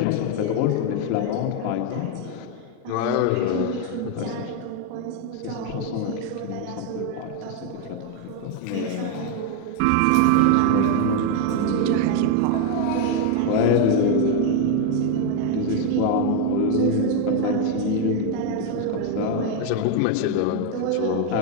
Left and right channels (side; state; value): both; different; correlation 0.01